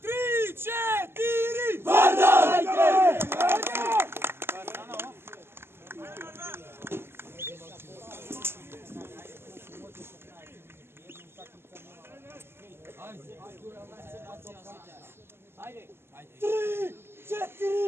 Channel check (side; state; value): left; late; 0.12 ms